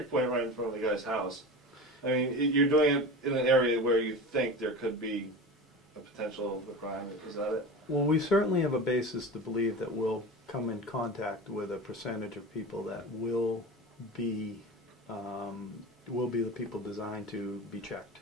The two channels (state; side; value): normal; both; correlation 0.31